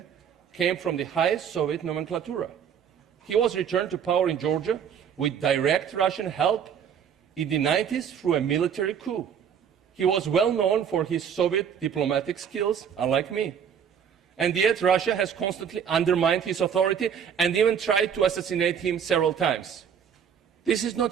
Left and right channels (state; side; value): quieter; left; 7.9 dB